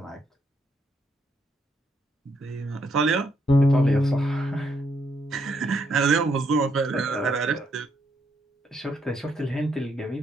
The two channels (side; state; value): both; normal; correlation 0.75